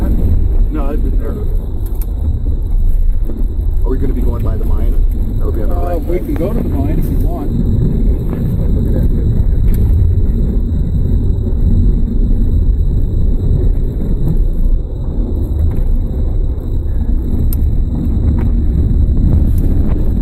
No, I've been there. Are we going to be going by the mine? Or are we on the right we side? can go to the mine if you want. Look at that.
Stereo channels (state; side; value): identical; both; correlation 1.00